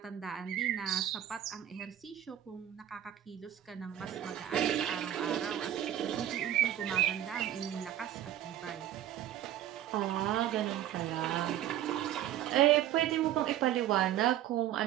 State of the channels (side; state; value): left; quieter; 11.8 dB